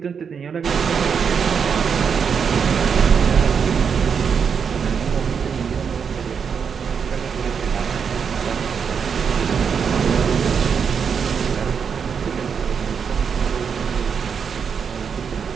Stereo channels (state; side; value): quieter; left; 6.6 dB